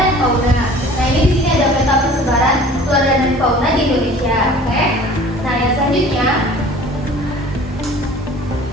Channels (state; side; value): normal; both; correlation 0.46